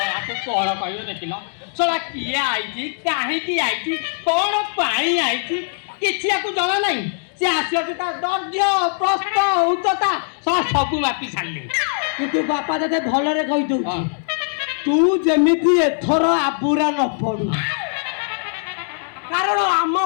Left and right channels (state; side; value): silent; right; digital silence